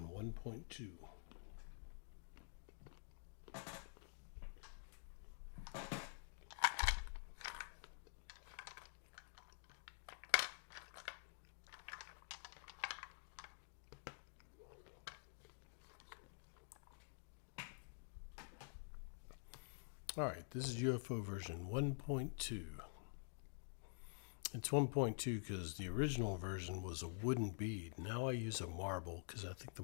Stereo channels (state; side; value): silent; right; digital silence